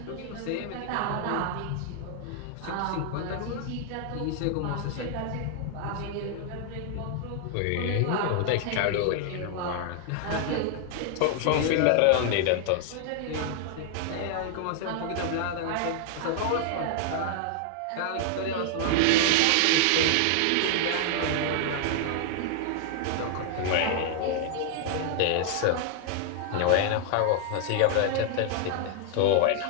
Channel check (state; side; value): different; both; correlation 0.00